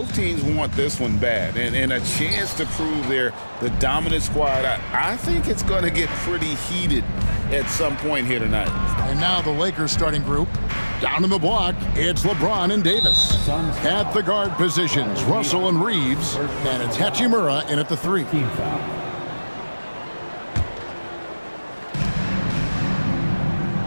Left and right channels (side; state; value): both; inverted; correlation -1.00